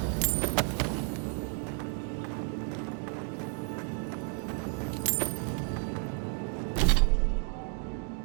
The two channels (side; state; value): left; quieter; 39.5 dB